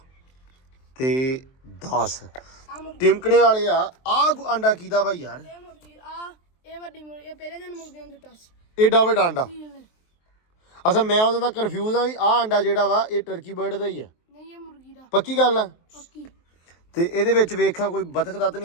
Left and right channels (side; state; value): right; late; 23 ms